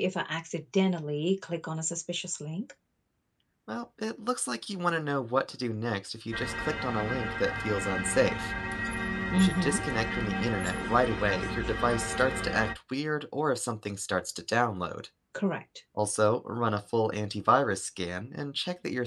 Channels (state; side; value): identical; both; correlation 1.00